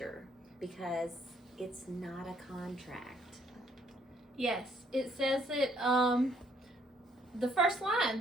because it's not a contract. Yes, it says it, the first line,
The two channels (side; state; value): both; normal; correlation 0.67